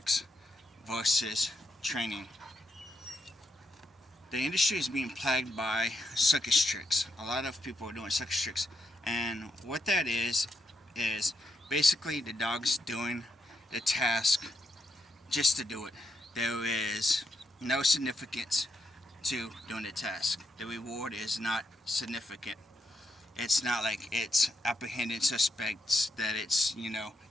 versus training. The industry is being plagued by circus tricks. A lot of people are doing circus tricks, and what that is basically the dog's doing the task just to do it. There is no significance to doing the task. The reward is not significant. It's not like it's apprehending suspects, that it's,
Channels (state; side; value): normal; both; correlation 0.81